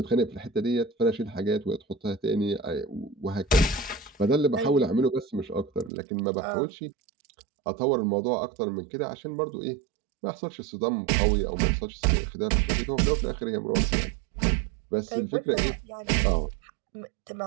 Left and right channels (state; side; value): drops out; left; at 5.9 s